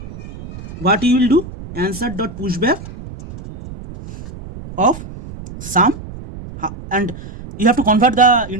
what you will do, answer dot pushback of sum, and you have to convert the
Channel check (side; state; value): right; noise; rumble, 14 dB below the sound